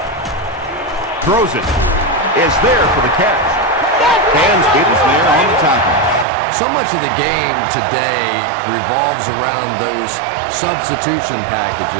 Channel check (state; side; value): drops out; left; at 6.2 s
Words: Throws it. Is there for the catch. Dansby is there on the tackle. So much of the game today revolves around those substitution